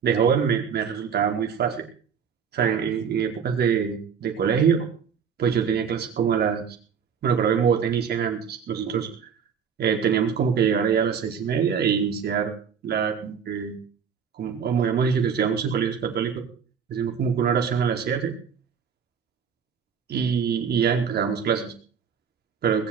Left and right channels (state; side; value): quieter; left; 6.9 dB